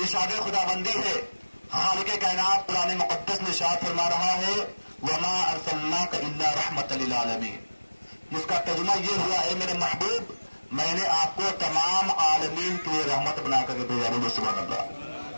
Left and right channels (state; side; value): inverted; both; correlation -1.00